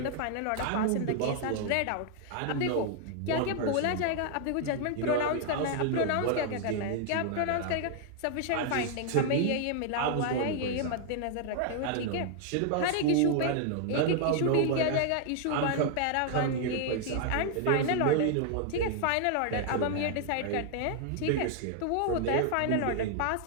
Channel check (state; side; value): different; both; correlation 0.00